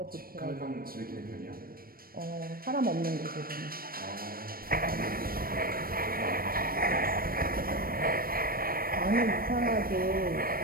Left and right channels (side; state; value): left; late; 0.43 ms